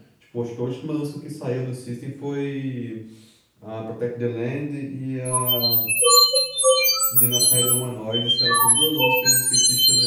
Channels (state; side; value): identical; both; correlation 1.00